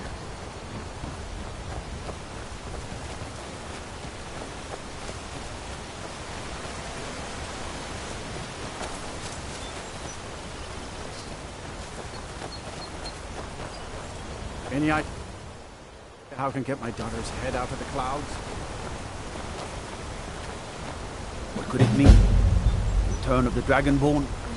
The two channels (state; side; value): identical; both; correlation 1.00